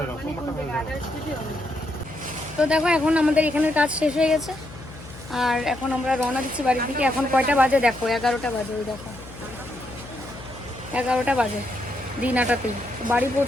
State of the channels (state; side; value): noise; left; hum, 16 dB below the sound